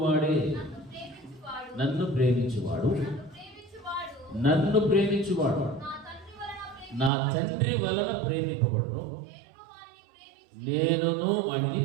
నన్ను ప్రేమించువాడు నా తండ్రి వలన ప్రేమింపబడును, నేనును వాడిని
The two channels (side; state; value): left; drops out; at 7.1 s